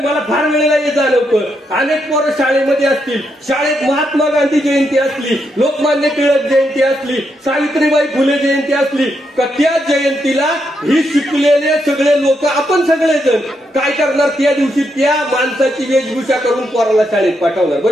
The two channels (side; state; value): both; normal; correlation 0.80